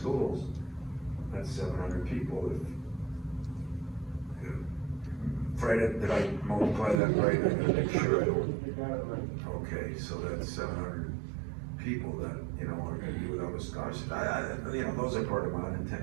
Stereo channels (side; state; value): left; drops out; at 7.0 s